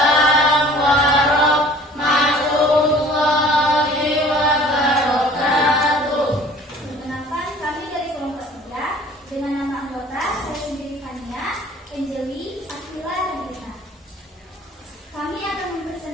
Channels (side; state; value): both; normal; correlation 0.50